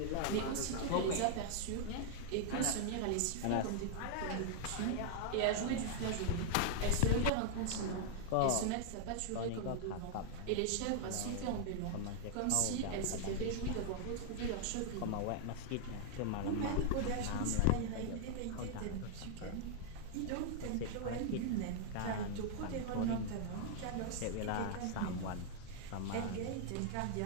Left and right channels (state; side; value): different; both; correlation 0.00